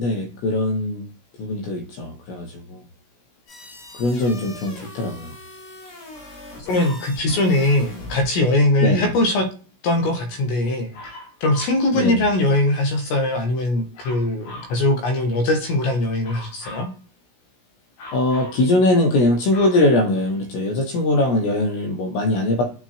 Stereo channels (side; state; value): right; late; 16 ms